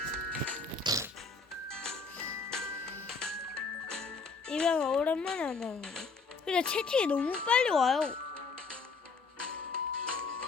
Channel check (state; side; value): quieter; right; 4.5 dB